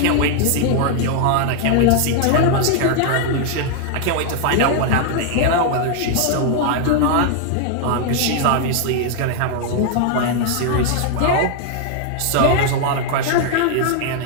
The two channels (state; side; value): different; both; correlation 0.00